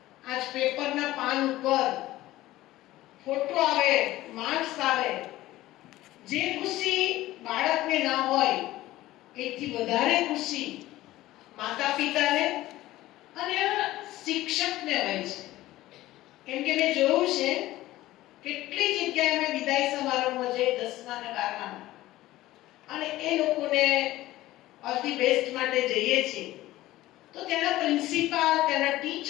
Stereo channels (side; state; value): right; quieter; 16.3 dB